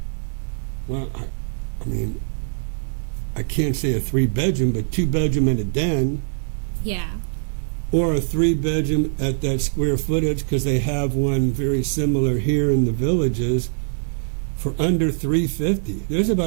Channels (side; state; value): left; silent; 56 dB below the other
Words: I can't say a 3-bedroom, but 2-bedroom and a den, Yeah. or a 3-bedroom at that square footage, because they have one very similar here in the Villages for under $350. There's